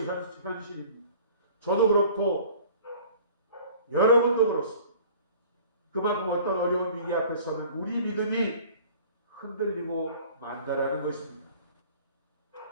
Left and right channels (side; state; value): both; inverted; correlation -0.47